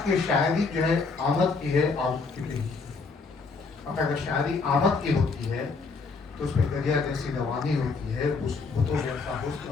کی شاعری جو ہے آمد کی ہے، آمد کی نہیں. اب اگر شاعری آمد کی ہوتی ہے تو اس میں دریا جیسی روانی ہوتی ہے، اس بتوں جیسا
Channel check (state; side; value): quieter; right; 4.4 dB